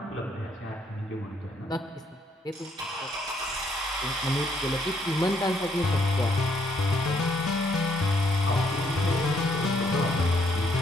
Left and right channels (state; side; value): normal; both; correlation 0.70